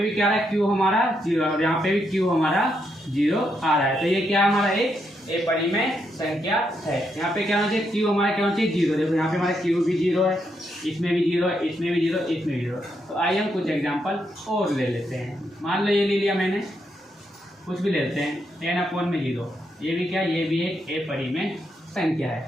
भी क्या रहा है, क्यू हमारा 0 और यहाँ पे भी क्यू हमारा 0 आ रहा है। तो ये क्या हमारा एक अपरिमेय संख्या है। यहाँ पे क्या होना चाहिए, क्यू हमारा क्या होना चाहिए, 0। देखो यहाँ पे हमारा क्यू भी 0 है, इसमें भी 0 है, इसमें भी 0, इसमें भी 0। तो आइए हम कुछ एग्जांपल और ले लेते हैं। मान लो ये ले लिया मैंने, कुछ भी लेते हैं 10/0। ये भी क्या, ये भी एक अपरिमेय संख्या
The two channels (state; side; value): normal; both; correlation 0.79